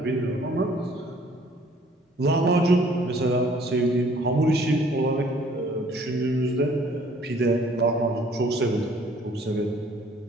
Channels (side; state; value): both; normal; correlation 0.58